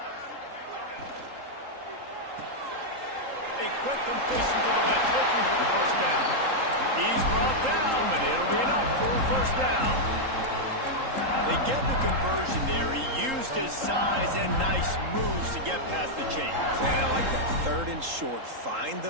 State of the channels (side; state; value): left; late; 3.8 ms